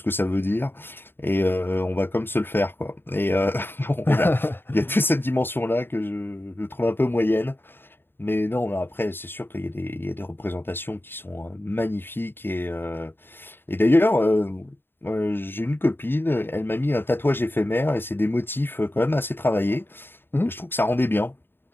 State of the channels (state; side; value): late; right; 0.10 ms